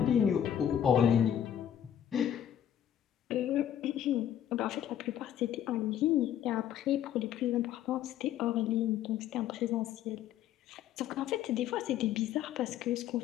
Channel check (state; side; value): quieter; right; 10.3 dB